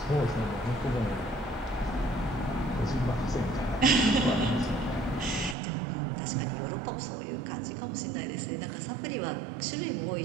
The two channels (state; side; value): drops out; left; at 5.6 s